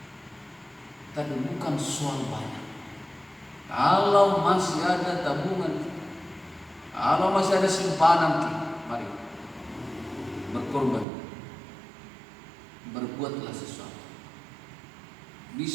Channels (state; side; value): drops out; left; at 11.1 s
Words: Tapi bukan soal banyak. Kalau masih ada tabungan, kalau masih ada simpanan kita, mari berkorban. Berbuatlah sesuatu.